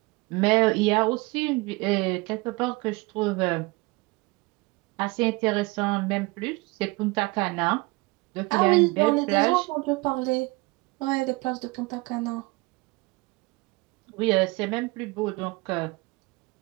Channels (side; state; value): left; quieter; 24.7 dB